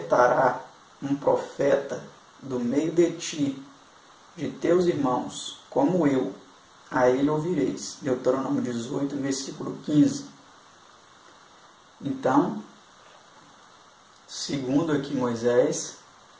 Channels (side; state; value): both; identical; correlation 1.00